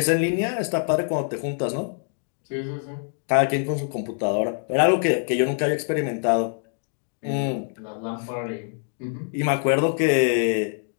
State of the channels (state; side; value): silent; right; digital silence